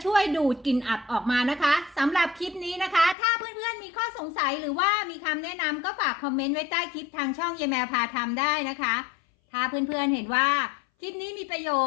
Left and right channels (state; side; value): drops out; right; at 3.2 s